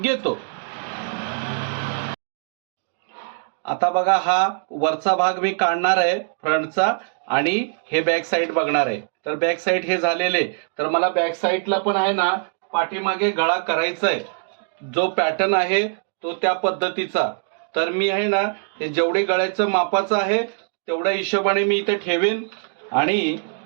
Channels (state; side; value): silent; left; digital silence